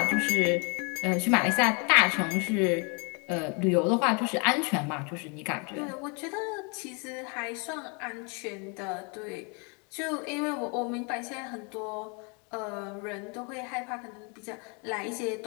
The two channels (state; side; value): quieter; right; 34.4 dB